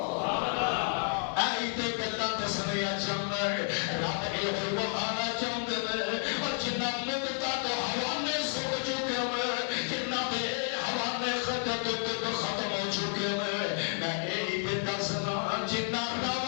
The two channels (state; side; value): silent; right; 57 dB below the other